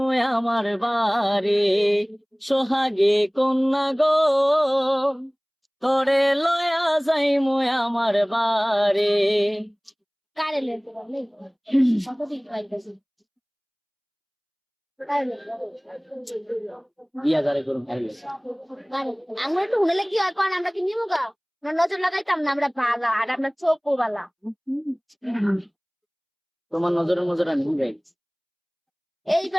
আমার বাড়ি সোহাগে কন্যা গো করে লয়া যাই মুই আমার বাড়ি। কারে লেতে পারলে কত দিন পাইতেছি বিয়া যারে করুন আমরা একটু হুনেলে কি হয় কোন আমরা কি নিবো গা নজর লাগাইতাম না আমরা বালা আর আমরা চোখও বালা তোমার নজরের নজর আমি যাই এই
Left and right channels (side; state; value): both; identical; correlation 1.00